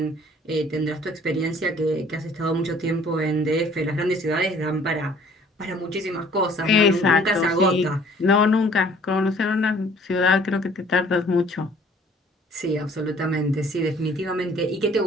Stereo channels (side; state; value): both; normal; correlation 0.55